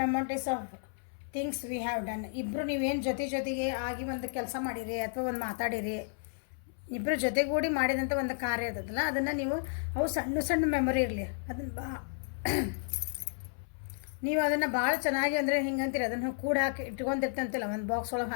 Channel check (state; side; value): silent; right; 56 dB below the other